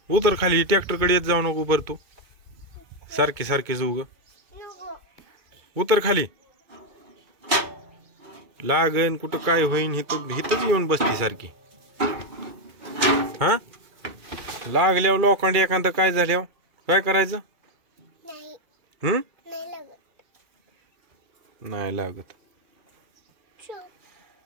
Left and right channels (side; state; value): left; late; 2.3 ms